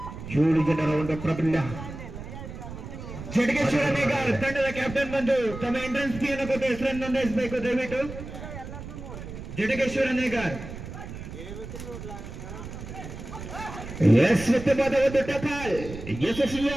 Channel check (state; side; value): noise; right; rumble, 11 dB below the sound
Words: 7 ಜನರ ಒಂದು ಪ್ರಾಬಲ್ಯ. ಜಡಗೇಶ್ವರ ನೇಗಾರ್ ತಂಡದ ಕ್ಯಾಪ್ಟನ್ ಬಂದು ತಮ್ಮ ಎಂಟ್ರೆನ್ಸ್ ಫೀಯನ್ನು ಕೊಟ್ಟು ಹೆಸರನ್ನು ನೋಂದಾಯಿಸಬೇಕು ದಯವಿಟ್ಟು. ಜಡಗೇಶ್ವರ ನೇಗಾರ್ ಉತ್ತಮವಾದ ಒಂದು ಟಕಾಲ್,